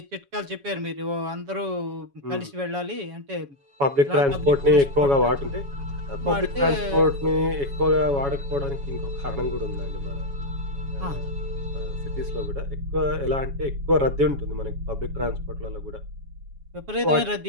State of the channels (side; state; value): left; late; 7.2 ms